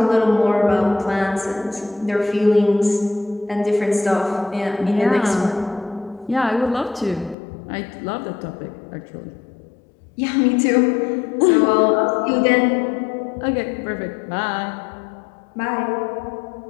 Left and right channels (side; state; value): right; drops out; at 7.4 s